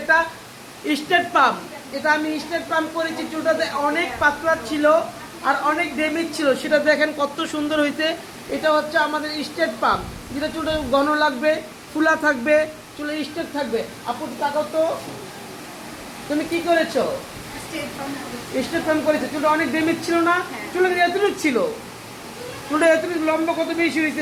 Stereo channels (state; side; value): identical; both; correlation 1.00